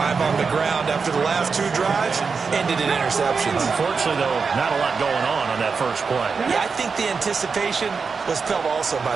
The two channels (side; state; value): left; quieter; 5.1 dB